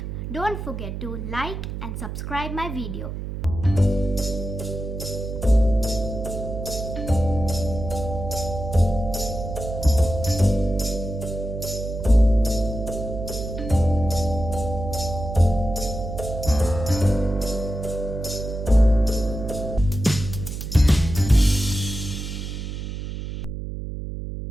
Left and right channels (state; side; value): noise; right; hum, 6 dB below the sound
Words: don't forget to like and subscribe my video.